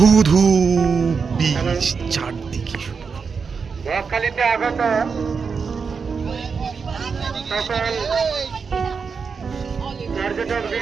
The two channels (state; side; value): quieter; left; 5.5 dB